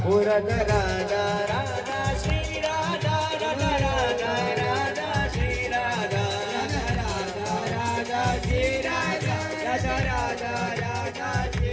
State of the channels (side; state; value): both; identical; correlation 1.00